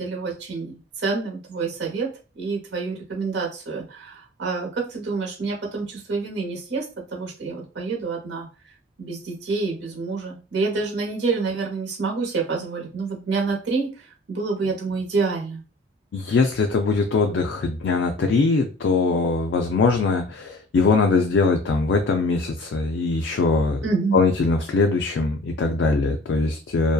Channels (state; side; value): normal; both; correlation 0.45